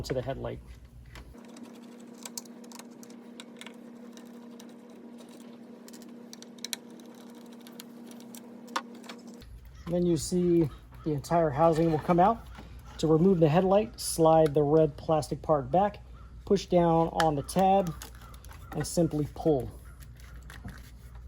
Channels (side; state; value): both; identical; correlation 1.00